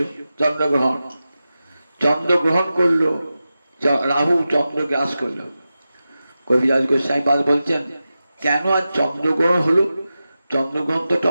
চন্দ্রগ্রহণ। চন্দ্রগ্রহণ করলো, রাহু চন্দ্র গ্রাস করলো। কবিরাজ গোস্বাইপাদ বলছেন, কেন আজ চন্দ্রগ্রহণ হলো? চন্দ্রগ্রহণ তো একটা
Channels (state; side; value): inverted; both; correlation -0.93